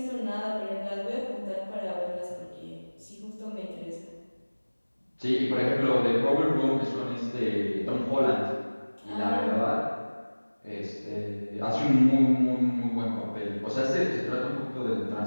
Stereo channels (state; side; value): inverted; both; correlation -1.00